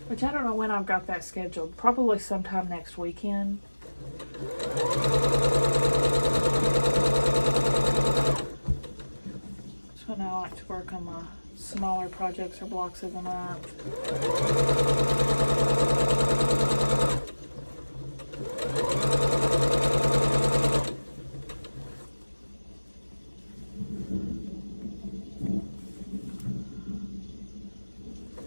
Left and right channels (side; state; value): both; inverted; correlation -1.00